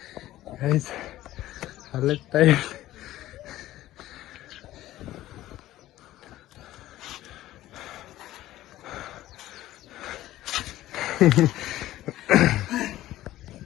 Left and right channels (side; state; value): right; quieter; 14.9 dB